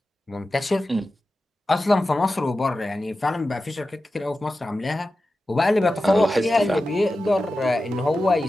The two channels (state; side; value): normal; both; correlation 0.93